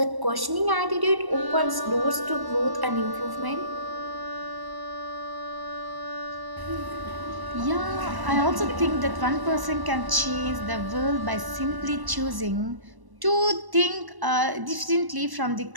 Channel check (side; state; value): left; late; 1.1 ms